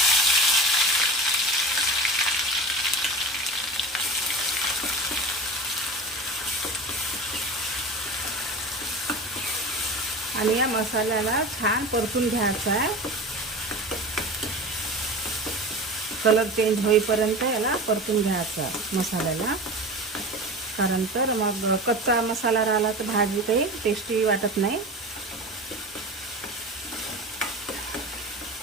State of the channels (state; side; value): normal; both; correlation 0.32